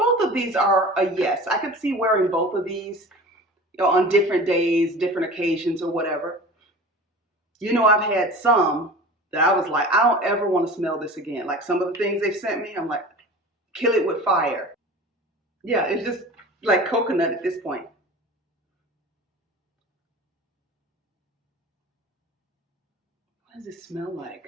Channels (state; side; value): normal; both; correlation 0.38